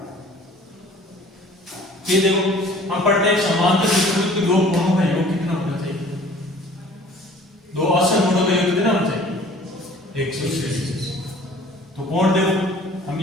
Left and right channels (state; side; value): normal; both; correlation 0.50